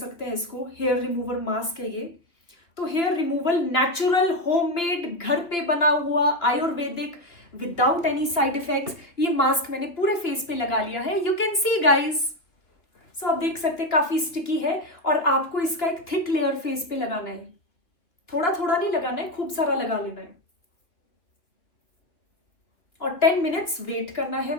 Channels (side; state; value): right; late; 2.7 ms